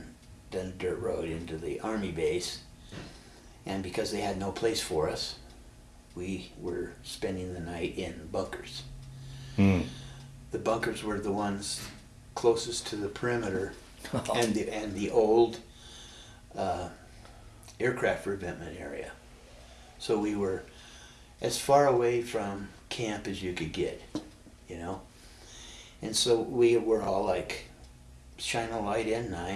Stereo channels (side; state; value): both; identical; correlation 1.00